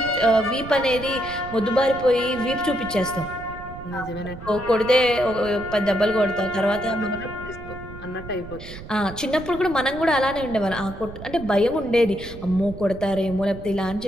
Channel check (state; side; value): noise; right; rumble, 14 dB below the sound